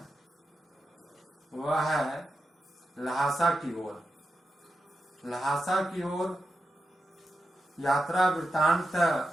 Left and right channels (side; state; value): both; normal; correlation 0.88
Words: वह है ल्हासा की ओर। ल्हासा की ओर यात्रा वृत्तांत